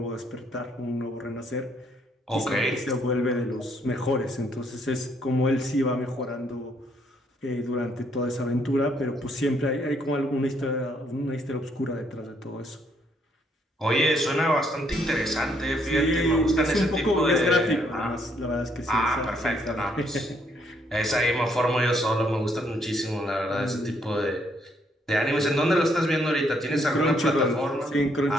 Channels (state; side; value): normal; both; correlation 0.70